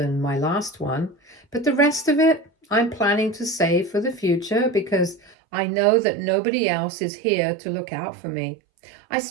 my last one. But the rest of it, I'm planning to save for the future because I know that nobody else is here to look out for me. I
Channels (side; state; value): left; drops out; at 5.4 s